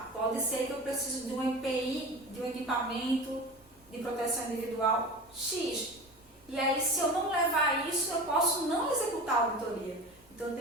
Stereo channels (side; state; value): right; noise; rumble, 29 dB below the sound